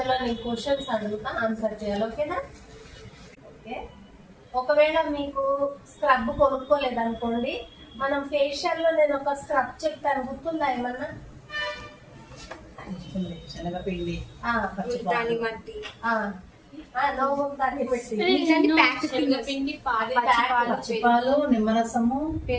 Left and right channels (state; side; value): identical; both; correlation 1.00